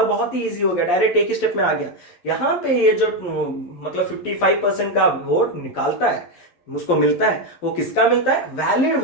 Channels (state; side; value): late; right; 11 ms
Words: बहुत ही इजी हो गया, डायरेक्ट एक ही स्टेप में आ गया। यहां पे ये जो मतलब 55% का वोट निकालता है, उसको मिलता है, वो किसका मिलता है? वैलिड